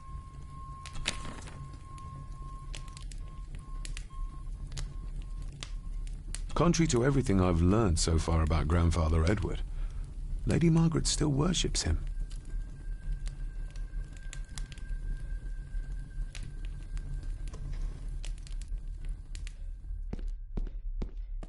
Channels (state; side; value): identical; both; correlation 1.00